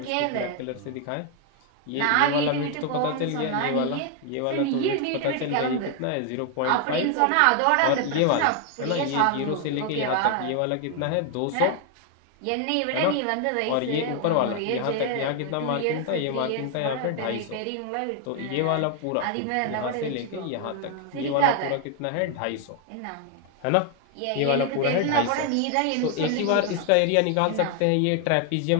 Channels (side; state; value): both; different; correlation 0.00